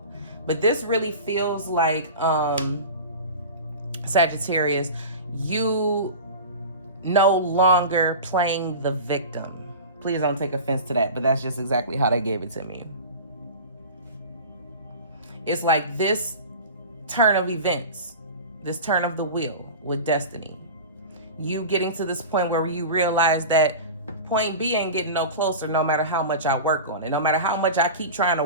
but this really feels like, Sagittarius, you no longer playing the victim. Please don't take offense to that, but that's just exactly how they gave it to me. It's like this turn of events, this turn of the wheel with destiny. You getting to this point where you realize that point B ain't getting no closer no matter how much I work on it. No matter how much I keep trying to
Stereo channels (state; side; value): inverted; both; correlation -0.32